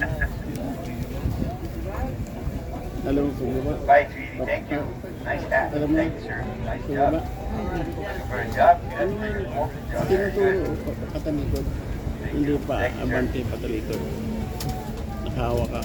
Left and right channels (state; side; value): identical; both; correlation 1.00